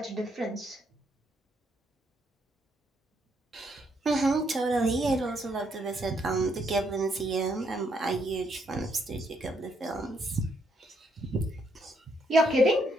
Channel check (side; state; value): both; normal; correlation 0.74